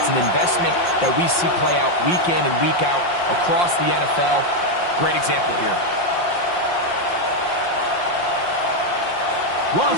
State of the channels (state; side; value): late; right; 5.7 ms